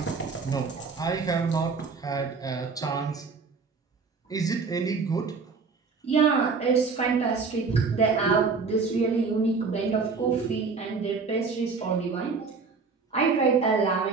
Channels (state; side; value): quieter; left; 4.7 dB